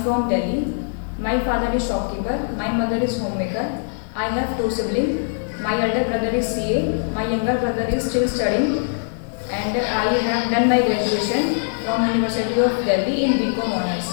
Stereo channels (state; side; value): silent; right; digital silence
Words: from Delhi. My father is shopkeeper. My mother is homemaker. I have two siblings. My elder brother is CA. My younger brother is still studying. And I have done my graduation from University of Delhi in BCom Honors.